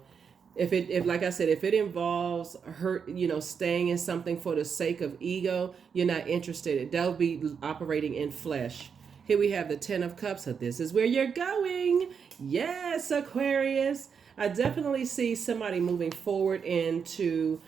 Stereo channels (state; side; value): quieter; left; 6.5 dB